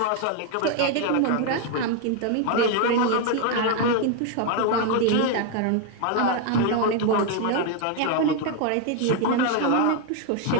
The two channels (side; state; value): both; different; correlation 0.01